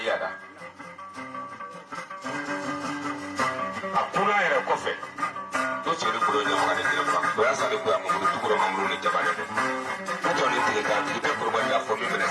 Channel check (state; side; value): identical; both; correlation 1.00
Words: Akuna era kofe. Doche ni kuronya mwana nilapa. Bayasa ni kuya mungu tukuro mamuru ni jabane. Kuto ni tilika tilika kurubanda fomi mene